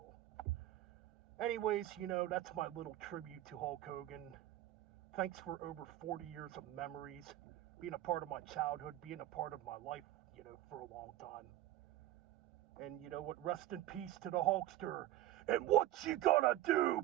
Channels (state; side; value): quieter; left; 14.3 dB